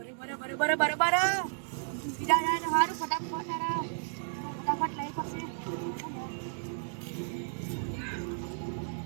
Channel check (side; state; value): left; silent; digital silence